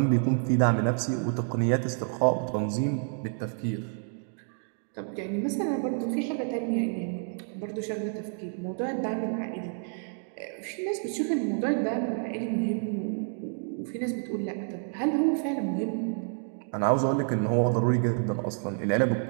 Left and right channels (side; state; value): left; silent; 59 dB below the other